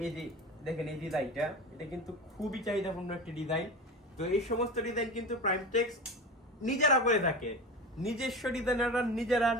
এই যে দেখেন এই ডিজাইনটা, এটা কিন্তু খুবই চাহিদাপূর্ণ একটি ডিজাইন। তো এই সমস্ত ডিজাইন কিন্তু প্রাইমটেক্স নিজেরা করে থাকে, নিজস্ব ডিজাইনাররা নিজেরা,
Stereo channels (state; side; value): normal; both; correlation 0.28